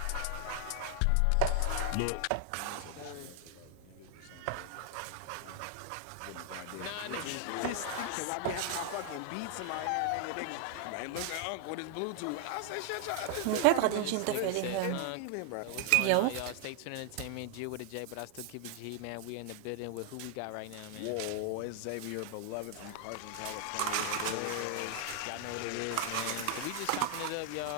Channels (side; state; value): both; different; correlation 0.00